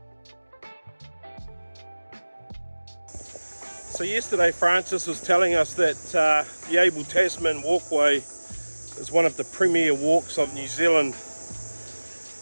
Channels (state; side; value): inverted; both; correlation -1.00